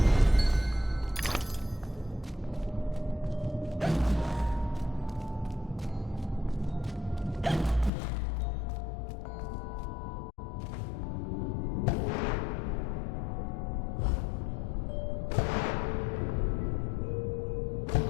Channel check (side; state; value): right; drops out; at 7.9 s